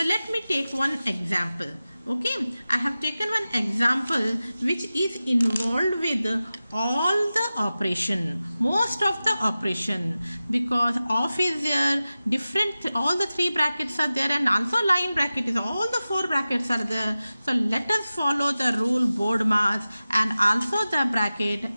let me take one example. Okay, I have taken one example which is involved with all the operation, most of the operation, because off is there, different, all the three brackets are there and also line bracket is, all the four brackets are there. So let us follow the rule BODMAS and also the bracket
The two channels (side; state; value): both; inverted; correlation -0.95